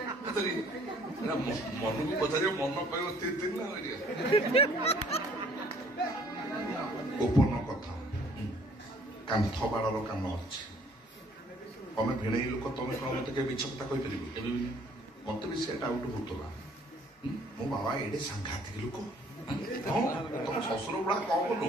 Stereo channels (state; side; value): normal; both; correlation 0.59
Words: ମନକୁ ପଚାରିବ ମନ କହିବ ତିନି ନା ଗୋପନ କଥା କାନ୍ଥ ବାଡର କାମ ଅଛି ତମେ ଭିଣେଇ ଲୋକ ତମେ କଣ ମତେ କେବେ ମିଛ କଥା କହିପାରିବ ମତେ ବି ସେ ଡାଉଟ ହଉଥିଲା ମୋ ବାବା ଏଡେ ସାଂଘାତିକ ଲୋକ ତମ ଶ୍ୱଶୁର ଗୁଡା କମ